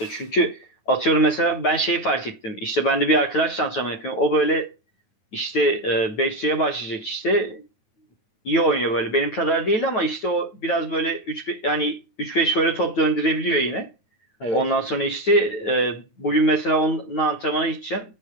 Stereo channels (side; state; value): right; late; 9.3 ms